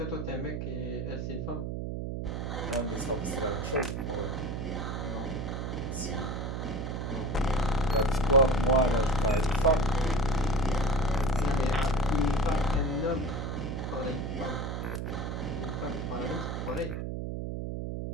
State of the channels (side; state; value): right; noise; hum, 3 dB below the sound